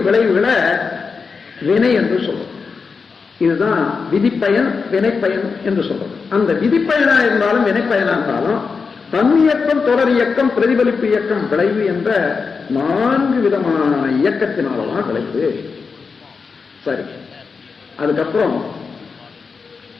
விளைவுகளை வினை என்று சொல்றோம். இதுதான் விதிப்பயன் வினைப்பயன் என்று சொல்றது. அந்த விதிப்பயனா இருந்தாலும் வினைப்பயனா இருந்தாலும் தன்னியக்கம், தொடர் இயக்கம், பிரதிபலிப்பு இயக்கம், விளைவு என்ற 4 விதமான இயக்கத்தினாலதான் விளைவு. சரி, அதுக்கப்புறம்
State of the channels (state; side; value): quieter; right; 5.1 dB